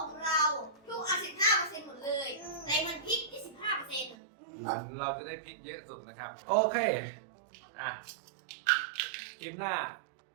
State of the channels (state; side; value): drops out; left; at 4.2 s